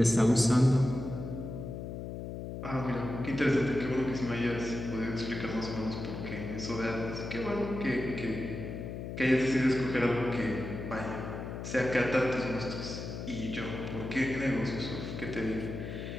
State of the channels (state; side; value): noise; left; hum, 7 dB below the sound